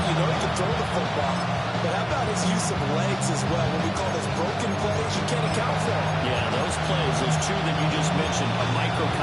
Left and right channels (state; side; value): identical; both; correlation 1.00